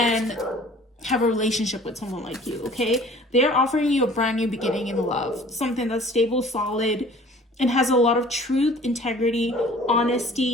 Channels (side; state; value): both; normal; correlation 0.50